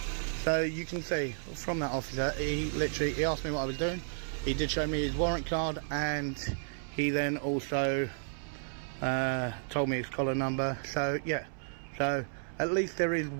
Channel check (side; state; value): left; silent; 56 dB below the other